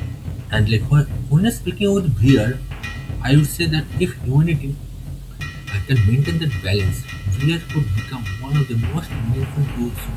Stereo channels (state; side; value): identical; both; correlation 1.00